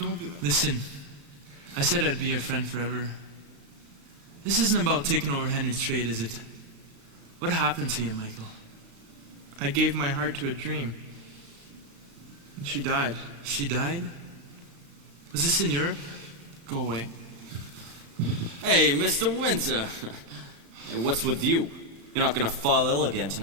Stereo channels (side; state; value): left; late; 36 ms